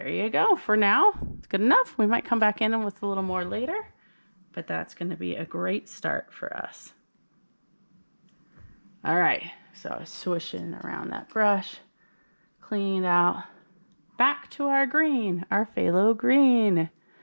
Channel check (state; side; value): inverted; both; correlation -1.00